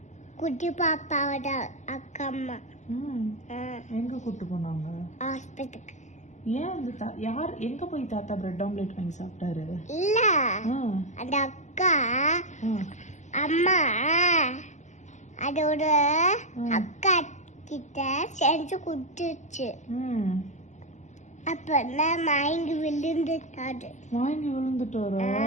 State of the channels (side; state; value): right; late; 0.34 ms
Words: குட்டி பாப்பாவோட அக்கா அம்மா. எங்க கூட்டு போனாங்க? ஹாஸ்பிட்டலுக்கு. ஏன் அந்த யார் எங்க போய் தாத்தா பிரெட் ஆம்லேட் வாங்கி சாப்பிட்டாரு? இல்ல, அந்த அக்கா அம்மா அதோட அக்கா கிட்ட செஞ்சு கொடுத்துச்சு. அப்ப மயங்கி விழுந்துட்டாரு. மயங்கி விழுந்துட்டாரா?